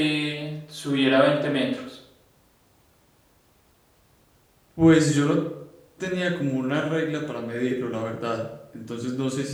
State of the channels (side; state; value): both; identical; correlation 1.00